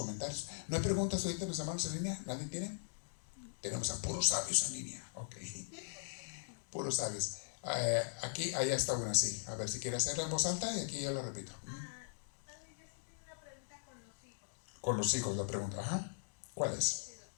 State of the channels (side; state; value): right; silent; digital silence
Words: ¿No hay preguntas ahorita los hermanos en línea? ¿Nadie tiene? Tenemos a puros sabios en línea. Ok. Puros sabios. Aquí, allá está una así. A ver si quiere hacerla en voz alta y aquí yo la repito. Padre, yo sí tengo una pregunta con los hijos. Con los hijos la pregunta. Ajá. ¿Cuál es?